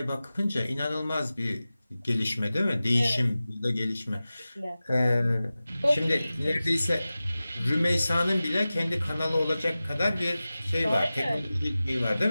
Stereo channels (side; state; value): both; inverted; correlation -0.96